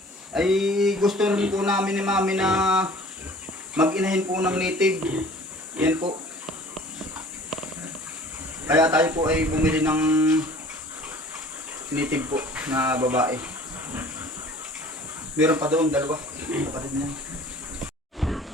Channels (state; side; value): normal; both; correlation 0.48